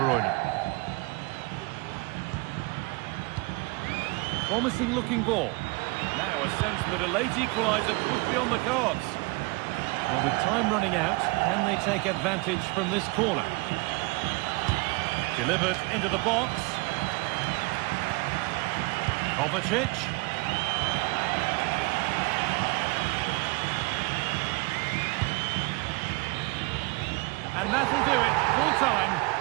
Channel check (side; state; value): left; quieter; 25.4 dB